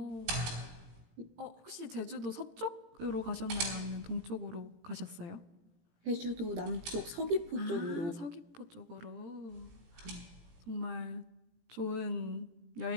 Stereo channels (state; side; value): late; left; 18 ms